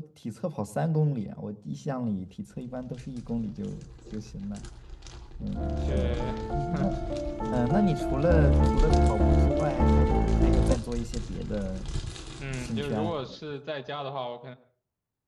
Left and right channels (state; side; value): identical; both; correlation 1.00